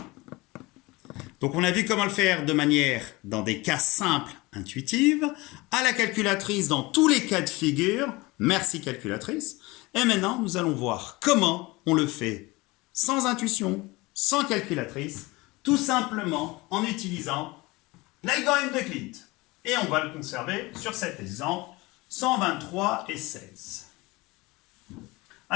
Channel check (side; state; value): right; quieter; 22.6 dB